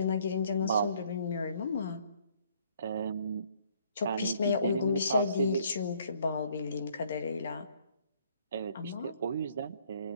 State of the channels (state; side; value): inverted; both; correlation -0.63